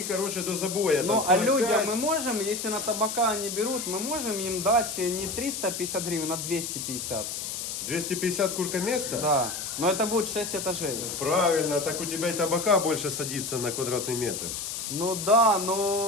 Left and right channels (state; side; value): noise; left; hiss, 5 dB below the sound